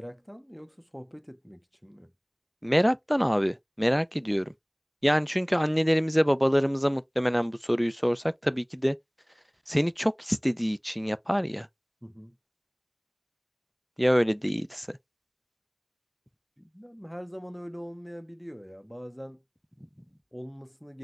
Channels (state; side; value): identical; both; correlation 1.00